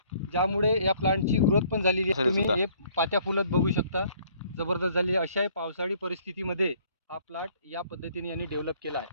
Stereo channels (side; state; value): both; inverted; correlation -0.60